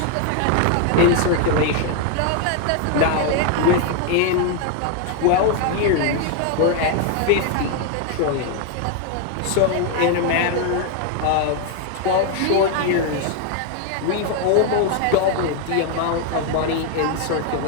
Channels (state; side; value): different; both; correlation 0.01